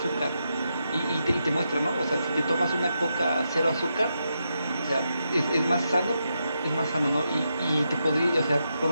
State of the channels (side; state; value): both; inverted; correlation -0.84